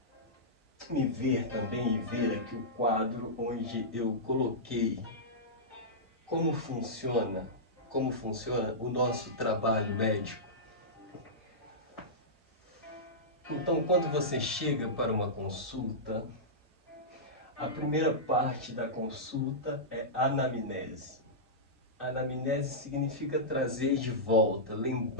ver também e ver aqui o quadro onde eu coloquei como funciona o nosso trabalho médico. Então, quando você chega para uma consulta, a primeira parte da consulta é anamnese. Anamnese significa trazer de volta,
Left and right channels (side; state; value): both; normal; correlation -0.14